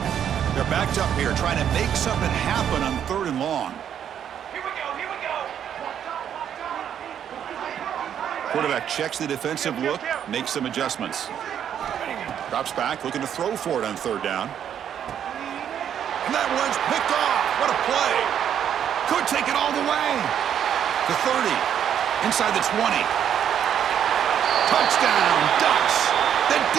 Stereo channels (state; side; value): quieter; left; 9.2 dB